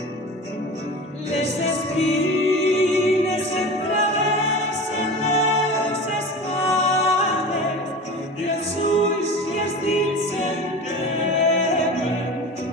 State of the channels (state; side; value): normal; both; correlation 0.33